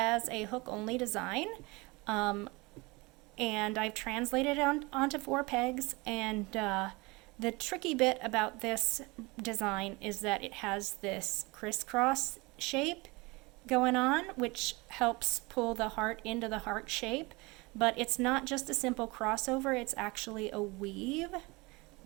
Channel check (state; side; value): quieter; left; 24.9 dB